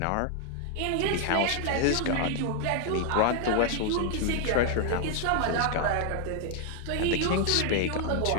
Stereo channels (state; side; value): different; both; correlation 0.00